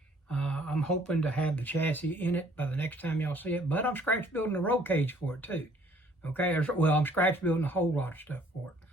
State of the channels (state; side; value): normal; both; correlation 0.60